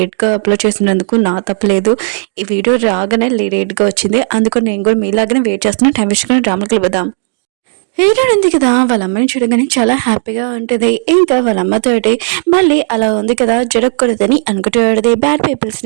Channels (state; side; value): silent; left; 57 dB below the other